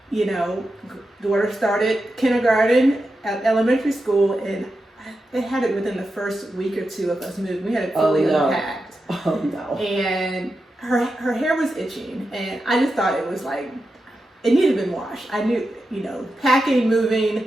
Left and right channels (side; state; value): both; normal; correlation 0.89